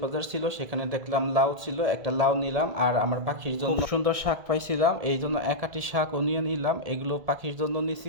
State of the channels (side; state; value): left; late; 1.8 ms